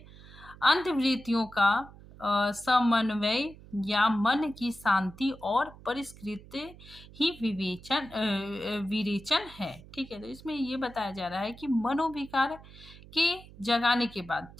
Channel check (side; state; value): right; noise; hum, 20 dB below the sound